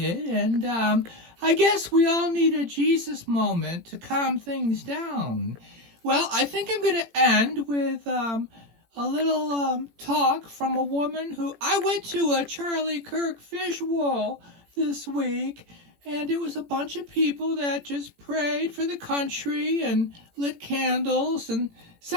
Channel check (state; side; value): late; left; 18 ms